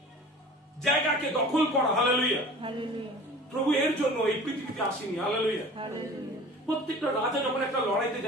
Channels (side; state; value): both; normal; correlation 0.42